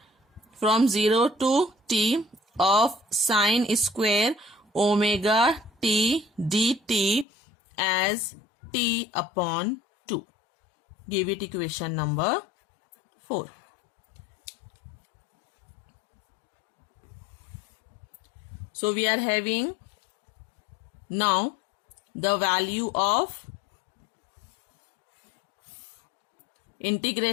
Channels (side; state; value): right; drops out; at 7.2 s